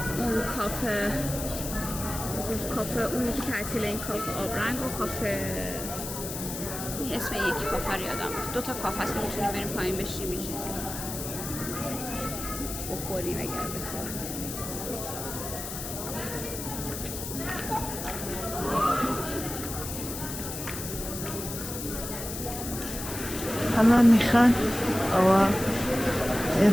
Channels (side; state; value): left; noise; hiss, 7 dB below the sound